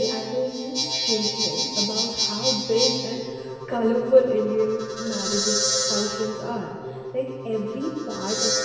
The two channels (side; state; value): both; identical; correlation 1.00